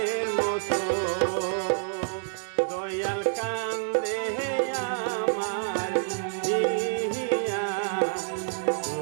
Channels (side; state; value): left; silent; digital silence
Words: মতো। দয়াল কান্দে আমার হিয়া